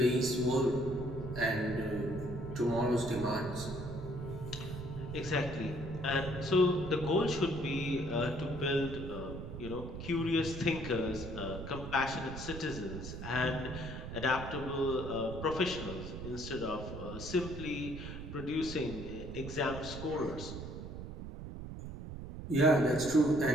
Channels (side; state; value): right; noise; rumble, 9 dB below the sound